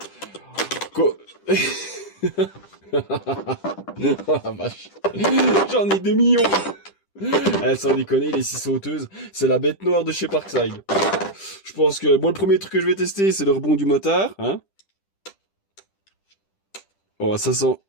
Oh la vache. J'en ai 2 millions. Sans déconner, les 6 sauteuses, c'est la bête noire de chez Parkside. Je pense que... Bon, le premier truc que je vais tester, c'est le rebond du motard. Hein. Oh, ça sent...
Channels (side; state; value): right; late; 10 ms